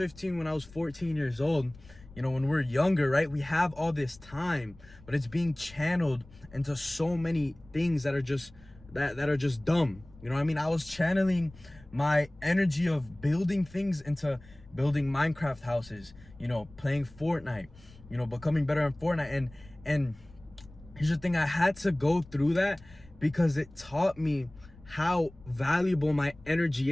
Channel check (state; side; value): noise; left; rumble, 23 dB below the sound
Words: when I was 14 years old, when we're younger, right, we have all this time, but it's being channeled into so many things that are just that are just dumb. You know what I mean? I was channeling my energy of building things into building Minecraft houses, playing Fortnite, becoming better in Fortnite. And here's the thing: I had to go through that because it taught me how valuable my energy